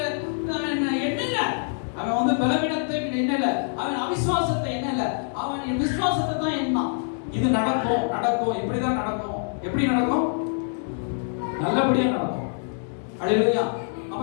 எண்ணல. அவன் வந்து பலவீனத்தை எண்ணல, அவன் அவிசுவாசத்தை எண்ணல, அவன் விசுவாசத்தை தான் எண்ணான். இது நடக்கும் நடக்கும், இப்படிதான் நடக்கும். எப்படி நடக்கும், நல்லபடியா நடக்கும். அல்லேலூயா. அப்ப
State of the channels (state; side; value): silent; right; digital silence